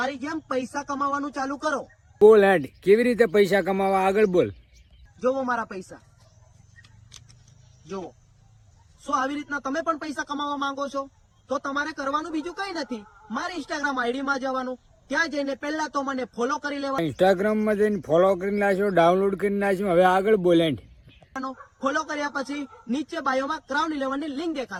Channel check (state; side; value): identical; both; correlation 1.00